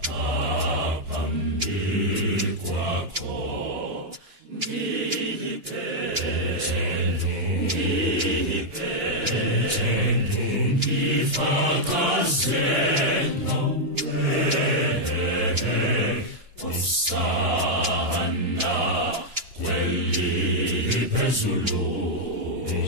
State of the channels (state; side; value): late; left; 2.9 ms